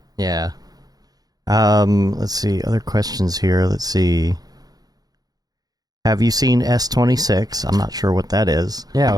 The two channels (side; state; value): left; late; 0.19 ms